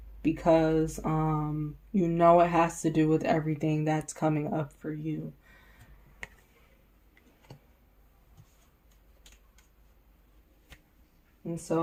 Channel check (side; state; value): both; identical; correlation 1.00